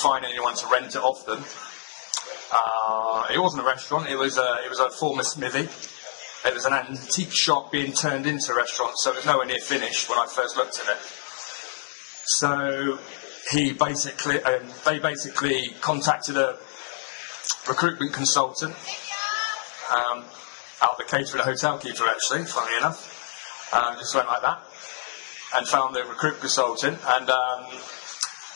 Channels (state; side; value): silent; right; digital silence